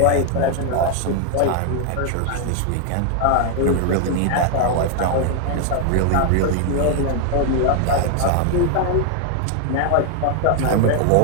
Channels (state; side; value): different; both; correlation 0.00